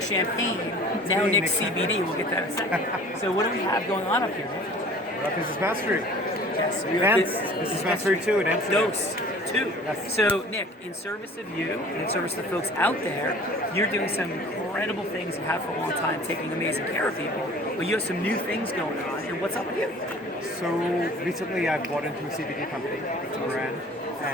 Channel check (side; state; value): both; normal; correlation 0.47